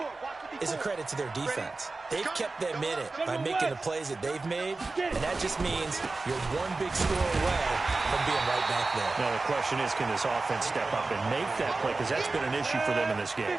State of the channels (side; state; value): left; quieter; 3.6 dB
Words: is a credit to their defense. They've kept them in it by making the plays that they've made, and that just means you're one big score away from being right back there. Now, the question is, can this offense step up and make that play? Because that's been an issue for them in this game.